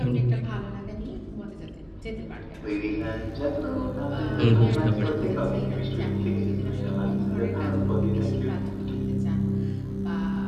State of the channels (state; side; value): identical; both; correlation 1.00